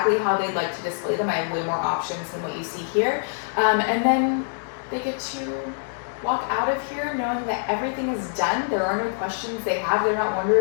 how they'd like to display them. I have way more options than what you see here. And then they get to walk out of here knowing that everything is done. There are no questions they have. They're not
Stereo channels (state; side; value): silent; right; digital silence